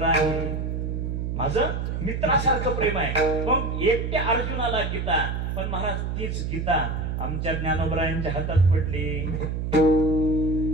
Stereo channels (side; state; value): right; noise; hum, 2 dB below the sound